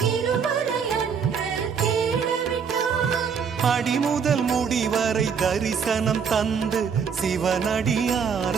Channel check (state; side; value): quieter; left; 6.6 dB